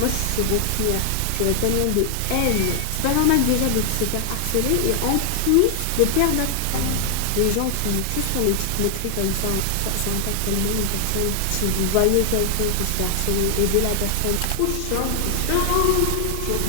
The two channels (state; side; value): different; both; correlation 0.00